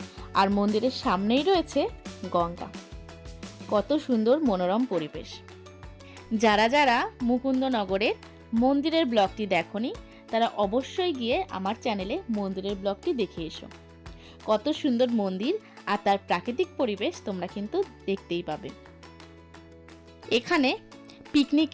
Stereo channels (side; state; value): both; identical; correlation 1.00